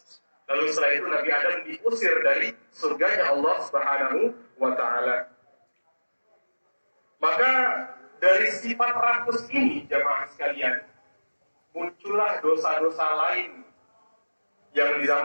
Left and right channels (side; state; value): both; inverted; correlation -1.00